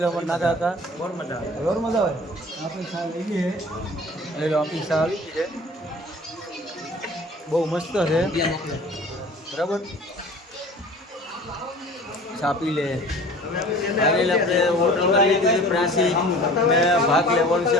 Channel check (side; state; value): both; normal; correlation 0.44